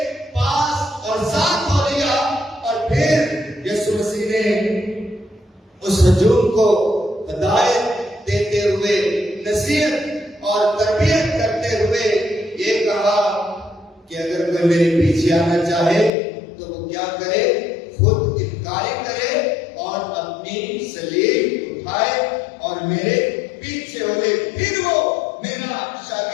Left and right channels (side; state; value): right; drops out; at 16.1 s